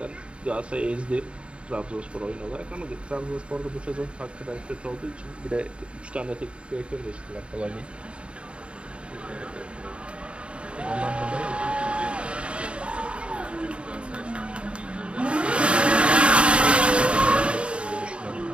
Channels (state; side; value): late; left; 0.057 ms